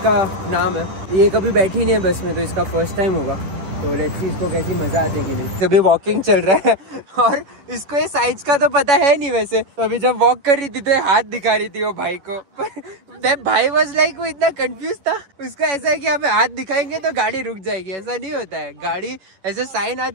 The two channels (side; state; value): left; late; 10 ms